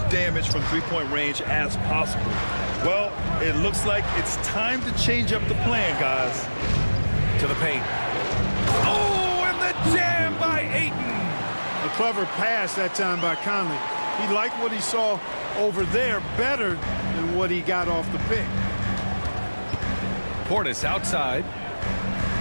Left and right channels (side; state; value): both; inverted; correlation -1.00